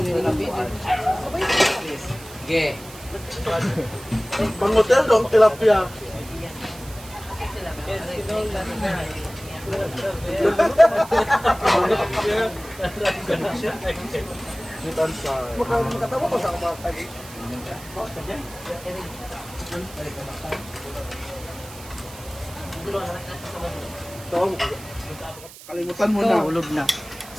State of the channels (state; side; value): noise; right; hiss, 17 dB below the sound